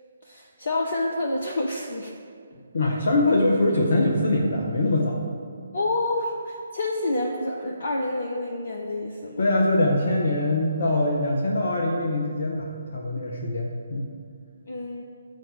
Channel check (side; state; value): both; inverted; correlation -0.76